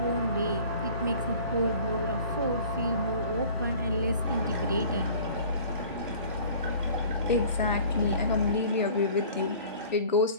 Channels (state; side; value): inverted; both; correlation -0.47